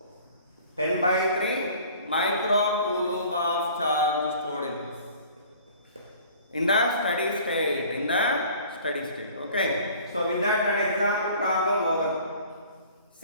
10 by 3 microcoulomb of charge stored in the steady state. In the steady state. Okay. So with that example problem over.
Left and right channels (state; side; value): inverted; both; correlation -0.49